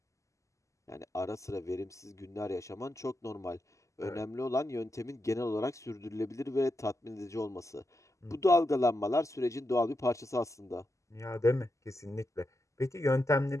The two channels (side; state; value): right; late; 0.15 ms